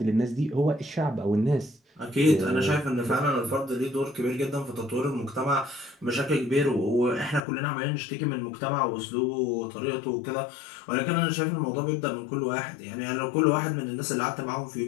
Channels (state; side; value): drops out; right; at 7.4 s